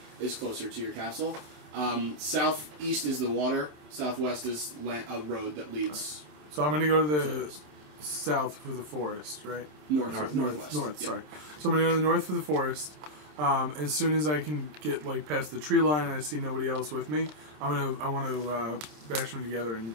is closer to your castle. Southeast is the water. Southwest is a road that leads So I'm gonna go to the south for the forest, right? northwest. North. Yeah. Sorry. So I'm gonna go to the north for the forest. As soon as I can get past the tree line and I see nobody else with me, I want to bash them together and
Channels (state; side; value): late; left; 27 ms